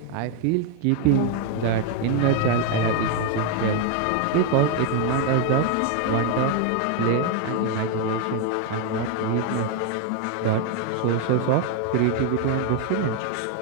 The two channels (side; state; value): both; different; correlation 0.01